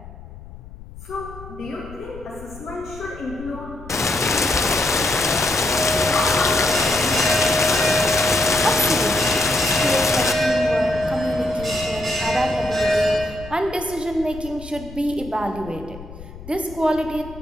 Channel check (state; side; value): noise; left; rumble, 16 dB below the sound